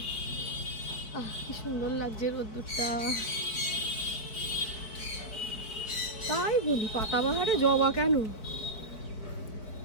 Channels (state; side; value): late; right; 4.4 ms